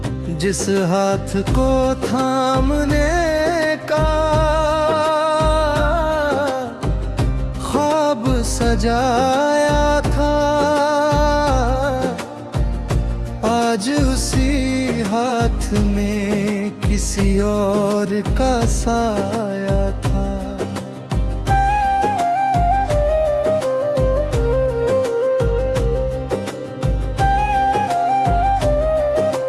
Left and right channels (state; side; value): identical; both; correlation 1.00